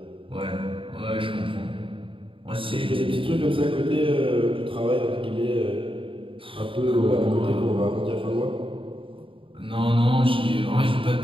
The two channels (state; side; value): late; left; 0.25 ms